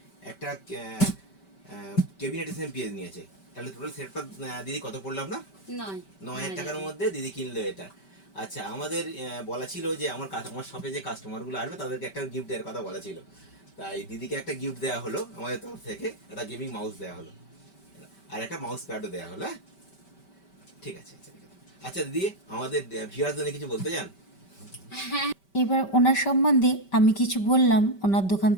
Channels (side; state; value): right; late; 5.2 ms